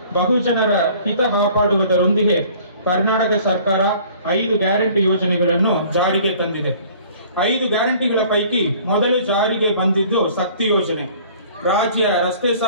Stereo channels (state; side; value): inverted; both; correlation -0.52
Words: ಬಹುಜನರ ಹಿತ ಕಾಪಾಡುವುದರೊಂದಿಗೆ ಕರ್ನಾಟಕ ಸರ್ಕಾರ 5 ಗ್ಯಾರಂಟಿ ಯೋಜನೆಗಳನ್ನು ಜಾರಿಗೆ ತಂದಿದೆ. 5 ಗ್ಯಾರಂಟಿಗಳ ಪೈಕಿ ಮೊದಲು ಜಾರಿಗೆ ಬಂದಿದ್ದು ಶಕ್ತಿ ಯೋಜನೆ. ರಾಜ್ಯ ರಸ್ತೆ